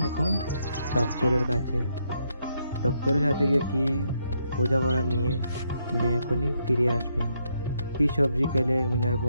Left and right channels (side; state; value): both; inverted; correlation -0.77